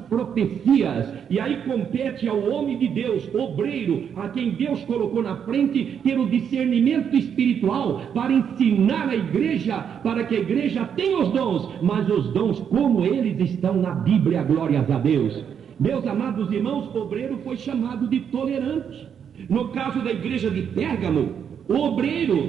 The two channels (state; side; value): quieter; left; 7.9 dB